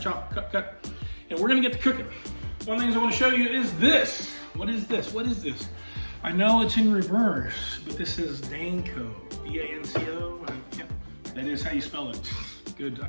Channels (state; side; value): inverted; both; correlation -1.00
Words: cut. And we're gonna get to cooking. One of the things I wanna show you is this. What is this? I know it's in reverse, but this is Danko, D-A-N-C-O. That is how you spell it. Good. I